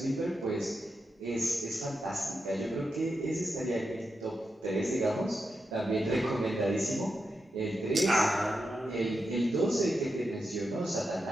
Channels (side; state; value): both; normal; correlation 0.87